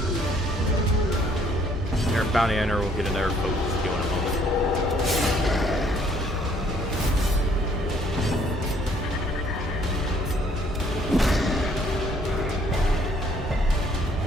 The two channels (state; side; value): normal; both; correlation 0.63